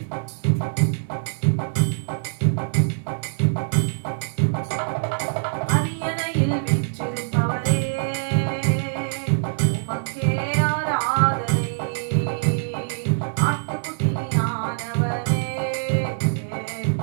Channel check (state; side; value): silent; left; 61 dB below the other